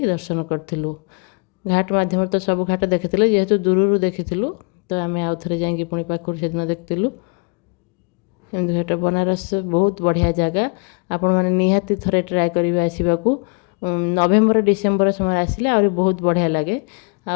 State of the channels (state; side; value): quieter; right; 34.4 dB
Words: ଦର୍ଶନ କରିଥିଲୁ। ଘାଟ ମାଧ୍ୟମରେ ତ ସବୁ ଘାଟ ଦେଖିଥିଲେ, ଯେହେତୁ ଦୂରରୁ ଦେଖିଥିଲୁ, ତ ଆମେ ଆଉ ଥରେ ଯାଇକି ପୁଣି ପାଖରୁ ସେଦିନ ଦେଖିଥିଲୁ। ଏମିତି ଘାଟ, ବନାରସ ବହୁତ ବଢ଼ିଆ ଜାଗା, ଆପଣମାନେ ନିହାତି ଥରେ ଟ୍ରାଏ କରିବେ ଆସିବାକୁ। ନଭେମ୍ବର ଡିସେମ୍ବର ସମୟରେ ଆସିଲେ ଆହୁରି ବହୁତ ବଢ଼ିଆ ଲାଗେ।